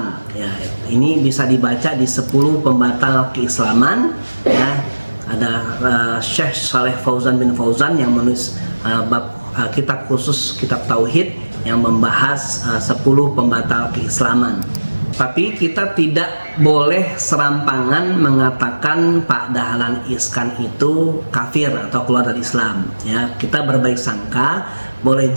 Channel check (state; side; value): inverted; both; correlation -1.00